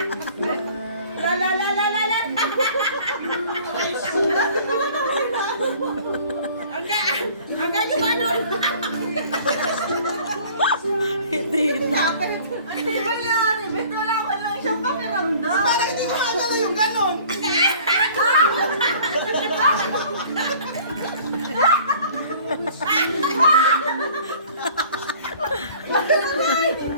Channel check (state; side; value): inverted; both; correlation -0.50